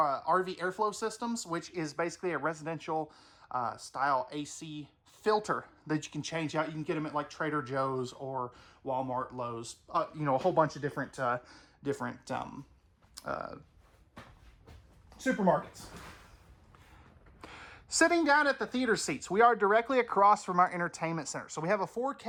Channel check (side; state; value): both; identical; correlation 1.00